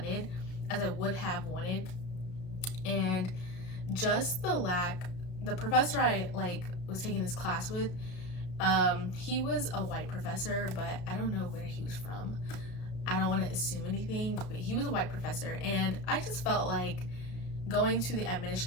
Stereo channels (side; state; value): right; late; 33 ms